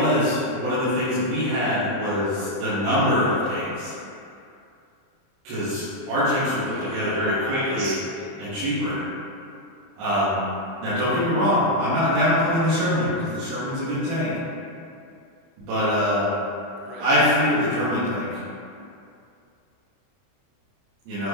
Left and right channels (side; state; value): left; late; 30 ms